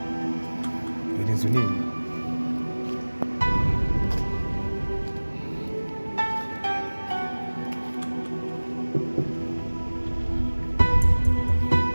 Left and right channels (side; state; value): both; inverted; correlation -1.00